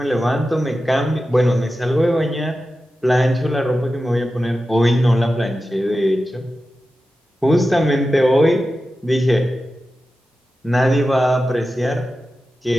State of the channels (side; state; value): both; normal; correlation 0.93